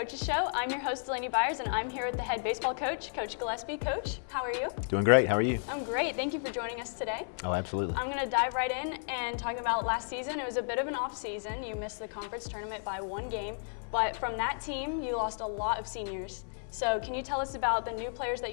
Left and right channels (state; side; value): silent; right; digital silence